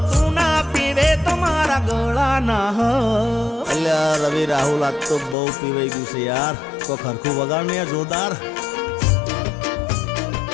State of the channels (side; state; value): right; drops out; at 5.4 s